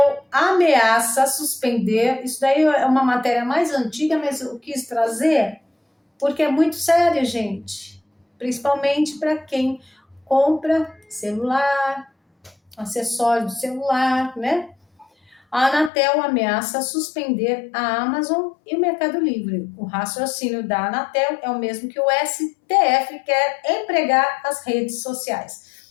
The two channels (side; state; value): right; drops out; at 15.9 s